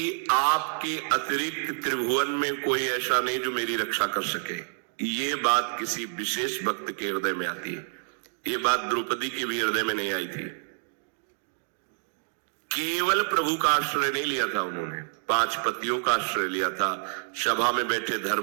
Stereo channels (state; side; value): silent; left; digital silence